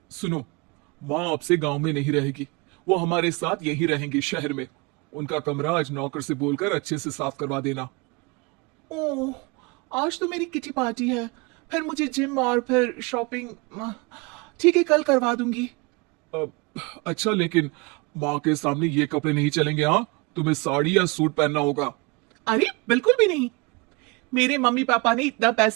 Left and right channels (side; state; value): left; quieter; 27.4 dB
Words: सुनो। माँ आपसे गांव में नहीं रहेगी। वो हमारे साथ यही रहेंगी शहर में। उनका कमरा आज नौकर से बोलकर अच्छे से साफ करवा देना। ओह, आज तो मेरी किटी पार्टी है, फिर मुझे जिम और फिर शॉपिंग। ठीक है, कल करवा दूंगी। अ, अच्छा, लेकिन माँ के सामने ये कपड़े नहीं चलेंगे। हाँ, तुम्हें साड़ी या सूट पहनना होगा। अरे बिल्कुल भी नहीं। मेरे मम्मी पापा ने इतना